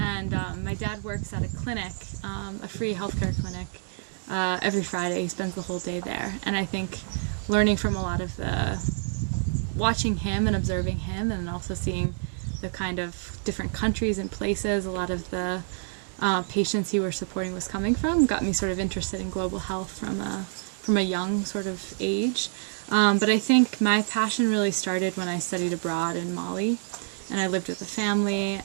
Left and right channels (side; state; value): left; silent; 60 dB below the other